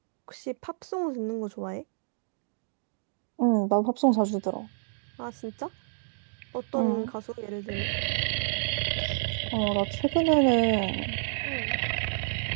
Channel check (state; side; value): silent; left; digital silence